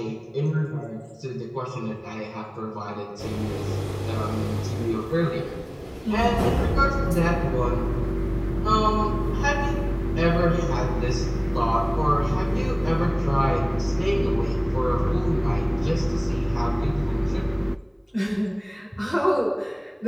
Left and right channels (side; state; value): both; identical; correlation 1.00